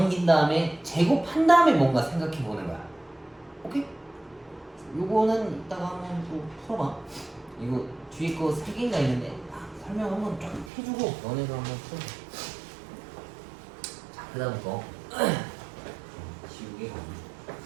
다음에 제곱한 다음에 뭔가 생각해 보는 거야. 오케이? 요거는 이따가 한번 또 풀어봐. 이거 뒤에 거 3개인가 있는데 설명 한번 쫙 해주고 너네가 한번 풀어. 자, 그 다음 거 지우개 가기.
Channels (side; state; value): left; drops out; at 10.7 s